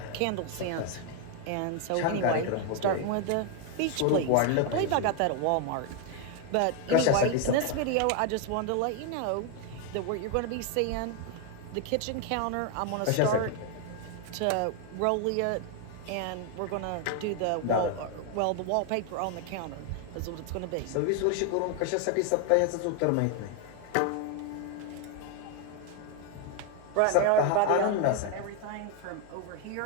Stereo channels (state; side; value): different; both; correlation 0.01